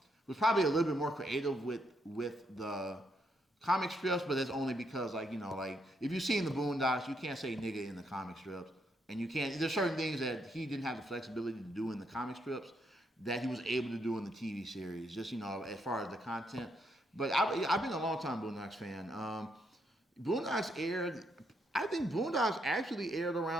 probably a little bit more creative with the comic strips, but that's only because like if you've seen the Boondocks, you can't say nigga in the comic strips, and you can't. There's certain things that he didn't have the flexibility to do in the comic strips that he was able to do in the TV series. Just as far as the content. But I've been a long time Boondocks fan. Boondocks aired. I think Boondocks actually aired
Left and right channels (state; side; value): normal; both; correlation 0.77